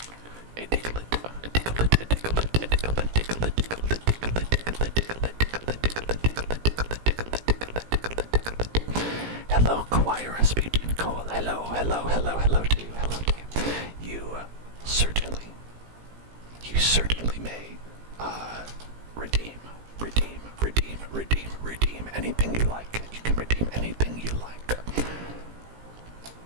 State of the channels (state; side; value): late; left; 17 ms